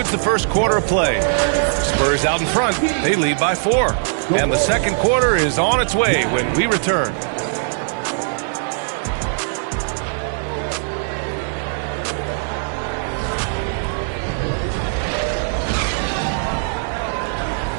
the first quarter of play. Spurs out in front. They lead by 4. And the second quarter is on its way when we return.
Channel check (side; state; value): left; silent; digital silence